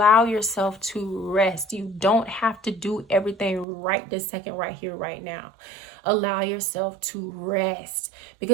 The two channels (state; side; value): drops out; left; at 3.7 s